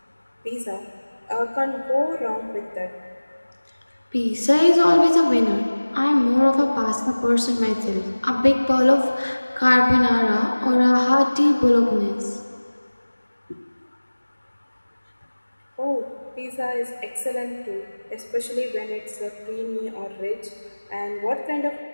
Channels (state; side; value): inverted; both; correlation -1.00